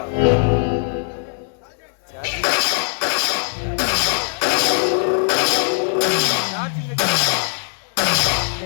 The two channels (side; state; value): right; silent; 58 dB below the other